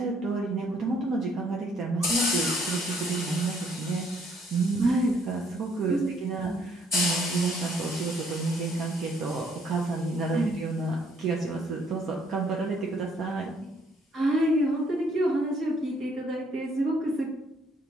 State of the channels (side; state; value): both; normal; correlation 0.66